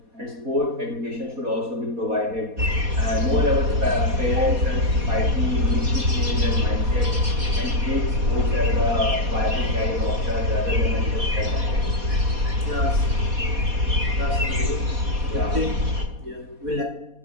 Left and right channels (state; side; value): late; left; 4.2 ms